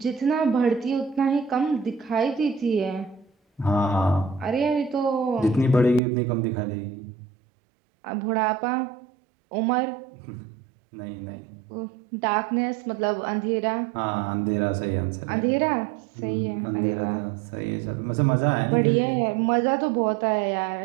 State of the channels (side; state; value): left; drops out; at 6.0 s